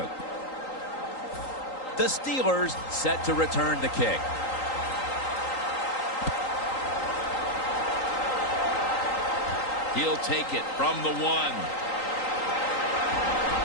The Steelers set to return the kick. He'll take it from the 1.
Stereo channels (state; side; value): late; right; 3.8 ms